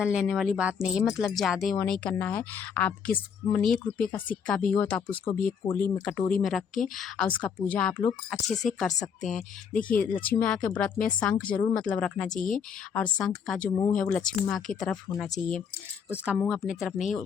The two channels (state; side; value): quieter; right; 7.0 dB